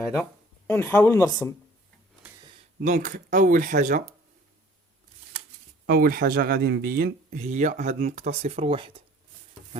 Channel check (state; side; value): normal; both; correlation 0.52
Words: ونحاول نرسم. دونك اول حاجه غادي نبين هي هاد النقطه 0 و1.